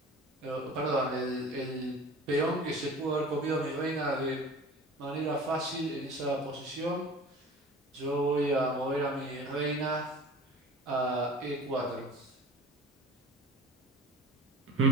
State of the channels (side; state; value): both; normal; correlation 0.41